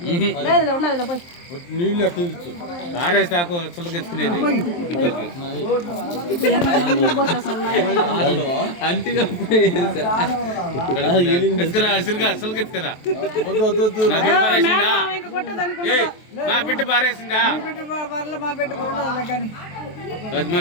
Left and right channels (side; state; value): right; late; 23 ms